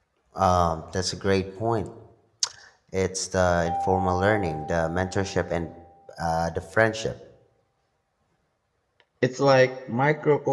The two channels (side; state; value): both; identical; correlation 1.00